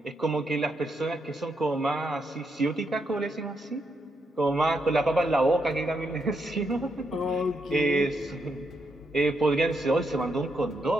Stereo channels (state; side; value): normal; both; correlation 0.80